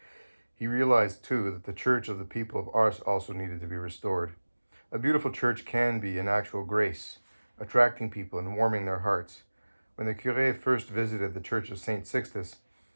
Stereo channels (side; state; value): both; inverted; correlation -1.00